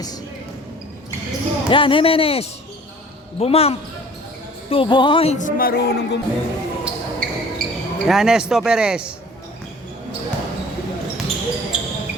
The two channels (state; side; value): normal; both; correlation 0.48